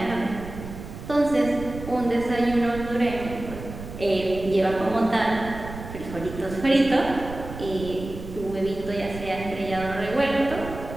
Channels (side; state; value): right; noise; rumble, 11 dB below the sound